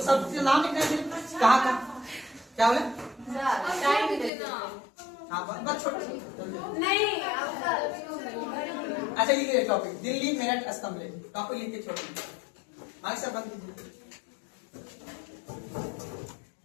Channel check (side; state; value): right; drops out; at 4.3 s